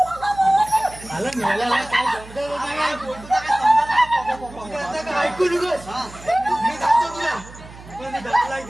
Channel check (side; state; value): right; noise; hum, 18 dB below the sound